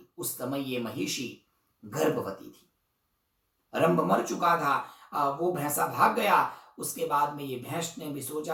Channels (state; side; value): identical; both; correlation 1.00